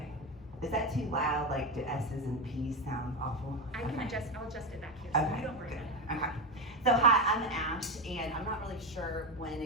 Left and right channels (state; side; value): normal; both; correlation 0.14